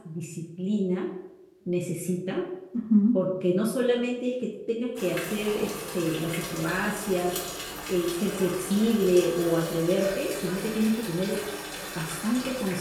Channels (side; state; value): both; identical; correlation 1.00